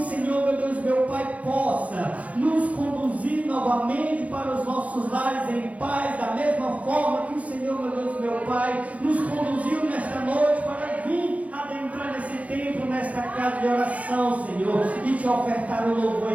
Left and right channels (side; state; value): left; late; 0.068 ms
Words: Senhor, meu Deus, meu Pai, possa nos conduzir novamente para os nossos lares em paz, da mesma forma que o Senhor, meu Deus, meu Pai, nos conduziu nesta noite para vir adentrar nesse templo, nesta casa de oração, Senhor, e te ofertar o louvor